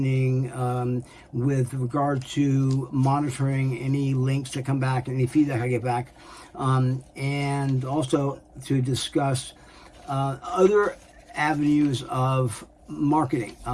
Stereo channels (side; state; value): both; identical; correlation 1.00